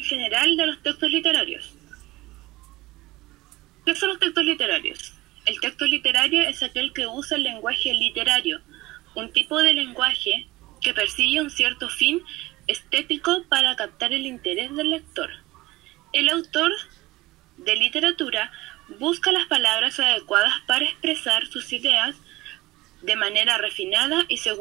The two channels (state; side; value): quieter; left; 19.4 dB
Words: general de los textos literarios. ¿Qué son los textos literarios? El texto literario es aquel que usa el lenguaje literario, un tipo de lenguaje que persigue un cierto fin estético para captar el interés del lector. El autor de literatura busca las palabras adecuadas para expresar sus ideas de manera refinada y